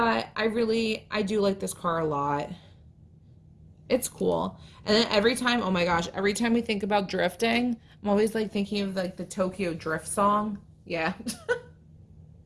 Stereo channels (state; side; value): identical; both; correlation 1.00